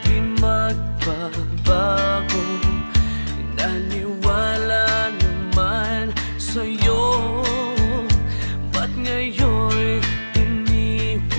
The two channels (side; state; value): both; inverted; correlation -1.00